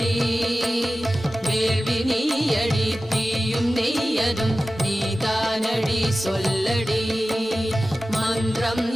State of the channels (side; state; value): both; normal; correlation 0.95